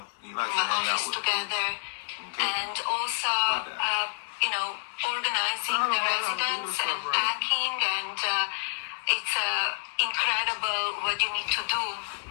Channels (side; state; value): right; quieter; 38.6 dB